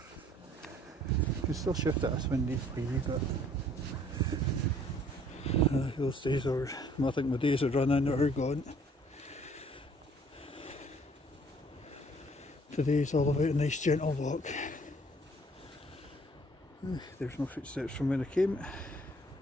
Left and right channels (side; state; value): both; normal; correlation 0.58